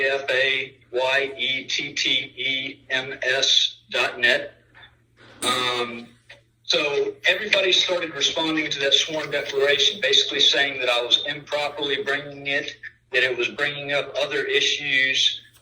LaFayettEMS.net. So everybody started responding to that sworn declaration, basically saying that I was improperly bringing it, that it was bringing up other issues.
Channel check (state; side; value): identical; both; correlation 1.00